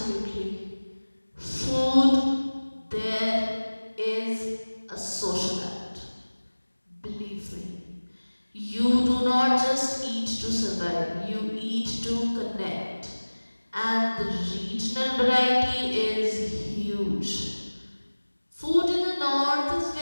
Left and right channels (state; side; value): inverted; both; correlation -1.00